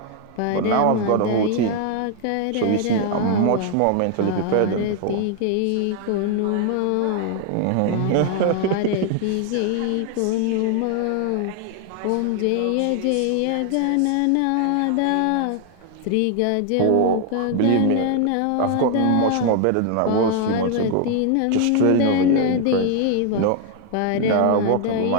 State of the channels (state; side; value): different; both; correlation 0.00